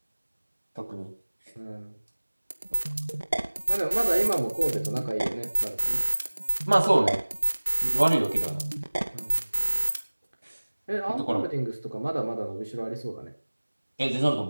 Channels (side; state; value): both; inverted; correlation -1.00